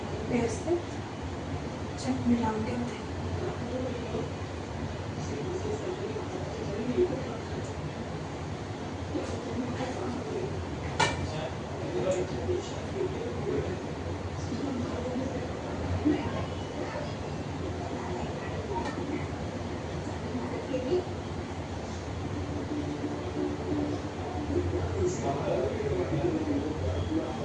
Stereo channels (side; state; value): both; identical; correlation 1.00